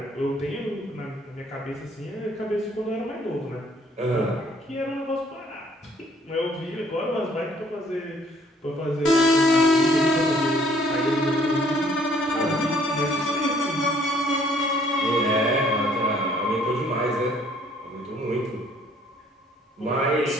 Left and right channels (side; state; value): both; normal; correlation 0.61